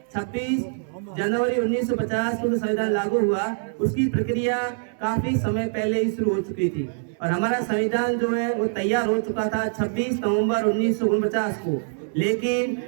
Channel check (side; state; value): left; silent; 62 dB below the other